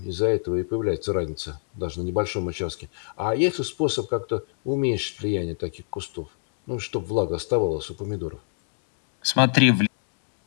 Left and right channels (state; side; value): silent; right; digital silence